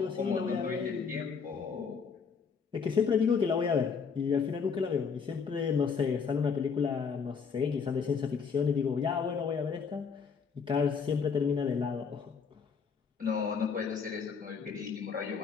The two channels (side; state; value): right; quieter; 5.9 dB